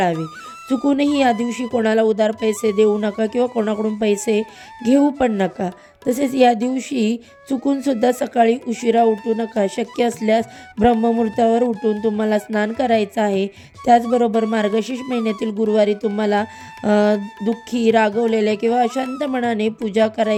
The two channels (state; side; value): identical; both; correlation 1.00